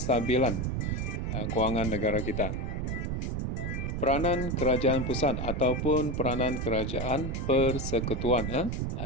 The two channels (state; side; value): noise; right; rumble, 2 dB below the sound